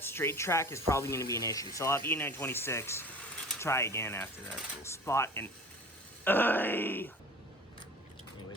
straight track is probably going to be an issue. So I'll have E926 try again after that little spot. And anyways,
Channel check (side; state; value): both; normal; correlation 0.40